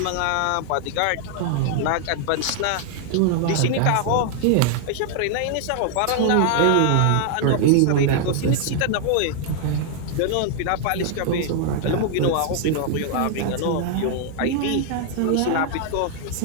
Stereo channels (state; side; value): different; both; correlation 0.00